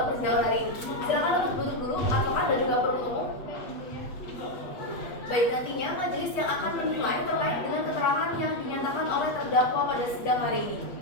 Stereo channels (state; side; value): late; right; 8.3 ms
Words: persidangan hari ini. Silakan untuk duduk dulu, advokat dan juga penuntut umum. Baik, nantinya majelis yang akan menilai terkait dengan keterangan yang dinyatakan oleh terdakwa pada sidang hari ini.